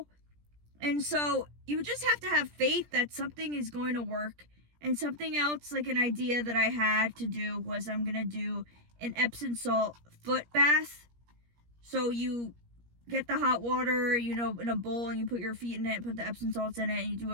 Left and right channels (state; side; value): late; left; 17 ms